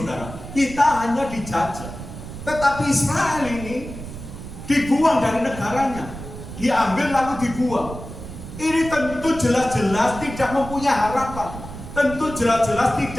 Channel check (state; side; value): noise; right; rumble, 11 dB below the sound